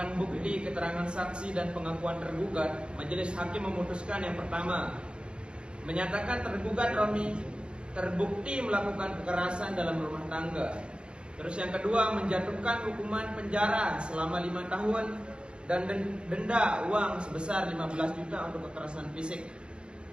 bukti, keterangan saksi dan pengakuan tergugat, majelis hakim memutuskan yang pertama, menyatakan tergugat Romi terbukti melakukan kekerasan dalam rumah tangga. Terus yang kedua, menjatuhkan hukuman penjara selama 5 tahun dan denda uang sebesar 15 juta untuk kekerasan fisik.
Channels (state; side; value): late; left; 0.054 ms